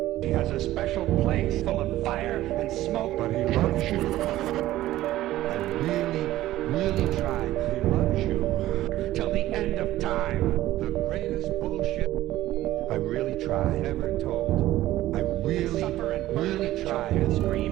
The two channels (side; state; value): left; quieter; 15.1 dB